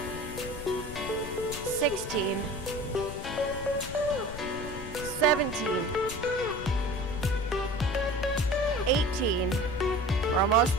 16, 17, 18, we're almost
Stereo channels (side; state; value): left; noise; rumble, 10 dB below the sound